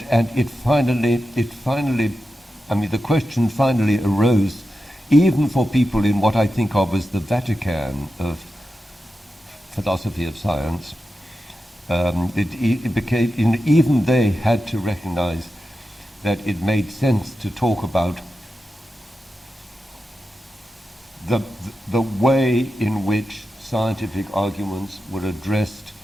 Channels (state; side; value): normal; both; correlation 0.90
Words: finally, the question finally arose, even for people in what I think of as the Vatican of philosophy of science. It became, even they had to recognize that it made sense to talk about the way in which scientific arguments were addressed